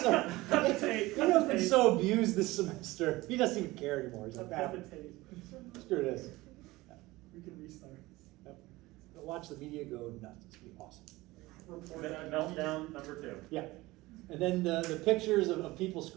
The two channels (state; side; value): quieter; left; 19.8 dB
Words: Daniel's been so abused this semester. He doesn't even care anymore. He's like, Have ah, a tape. screw this. We can restart. Yep. Watch the media go nuts. It's gonna be awesome. Meltdown number 2. Yeah. And then the pictures of people